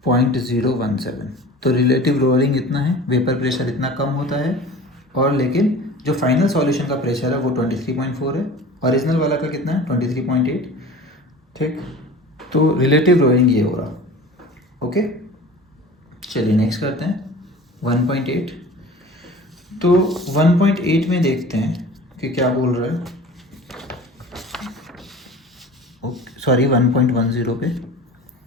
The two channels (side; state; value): both; normal; correlation 0.40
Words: 0.017। तो रिलेटिव लोअरिंग इतना है, वेपर प्रेशर इतना कम होता है, और लेकिन जो फाइनल सॉल्यूशन का प्रेशर है वो 23.4 है, ओरिजिनल वाला का कितना है 23.8, ठीक। तो रिलेटिव लोअरिंग ये हो रहा, ओके। चलिए नेक्स्ट करते हैं 1.8। तो 1.8 में देखते हैं कि क्या बोल रहा है, ओके सॉरी 1.10 पे।